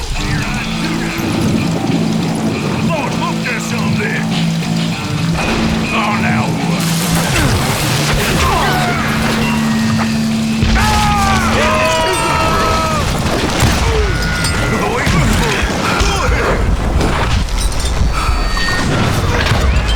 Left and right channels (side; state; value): both; identical; correlation 1.00